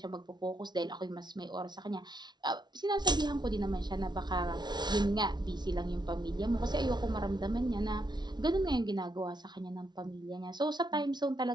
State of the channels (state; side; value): late; left; 0.20 ms